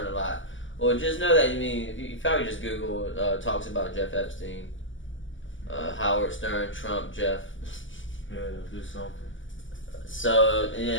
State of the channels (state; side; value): late; right; 0.56 ms